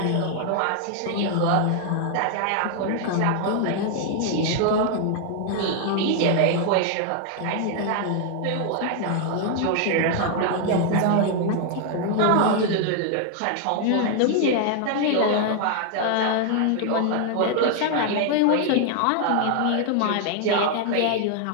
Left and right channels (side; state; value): both; different; correlation 0.00